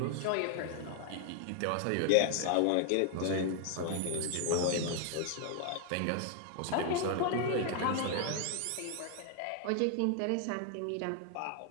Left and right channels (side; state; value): both; different; correlation 0.00